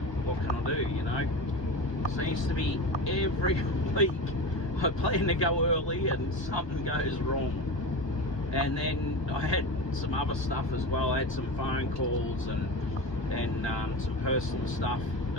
what can I do, you know? Seems to be every week I plan to go early and something goes wrong. And then I had some other stuff as well. I had some phone calls and some personal stuff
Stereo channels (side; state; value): right; late; 1.2 ms